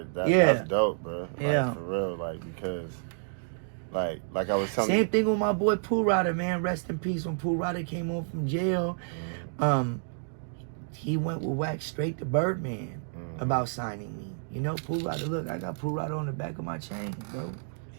that. Yeah. That's dope, bro. Like, for real, like, because, like I was telling you. Same thing with my boy Pooh Rider, man. Rest in peace. When Pooh Rider came home from jail, he went with Wax straight to Birdman about signing me. You know, Pooh Rider, look, I got Pooh Rider on the back of my chain, bro.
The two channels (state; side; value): silent; left; digital silence